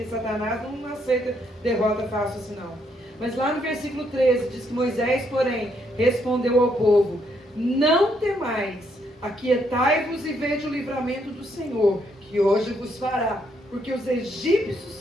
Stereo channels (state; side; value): normal; both; correlation 0.73